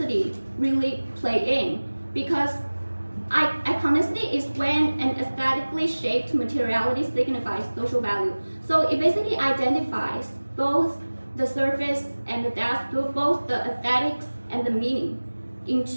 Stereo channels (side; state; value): both; inverted; correlation -1.00